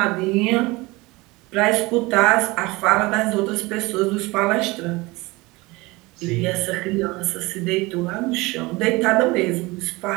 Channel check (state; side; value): quieter; left; 22.8 dB